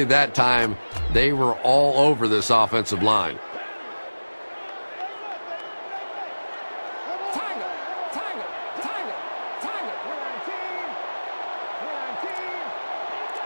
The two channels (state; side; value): inverted; both; correlation -1.00